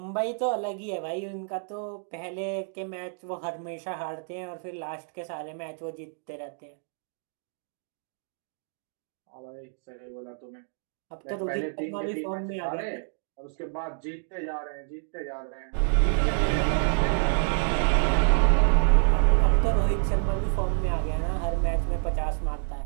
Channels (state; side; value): silent; left; 59 dB below the other